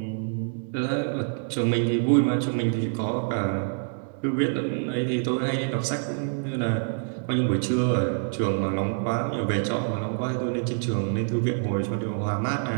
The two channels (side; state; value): left; silent; digital silence